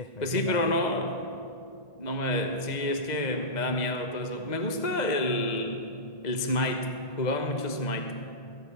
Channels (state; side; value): late; right; 2.0 ms